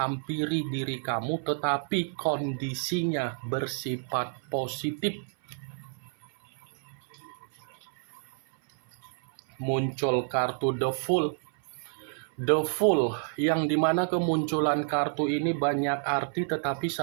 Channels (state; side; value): silent; left; 58 dB below the other